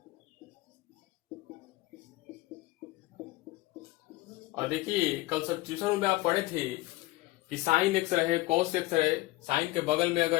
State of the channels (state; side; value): quieter; right; 19.3 dB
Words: और देखिए कल सब्स्टिट्यूशन में आप पढ़े थे कि साइन एक्स रहे, कॉस एक्स रहे, साइन के बगल में